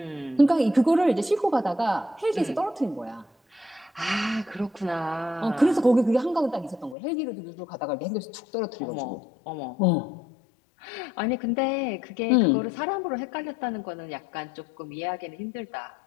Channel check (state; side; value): drops out; right; at 7.0 s